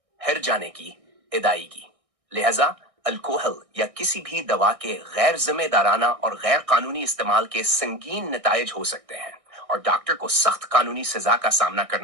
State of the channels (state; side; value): late; left; 1.6 ms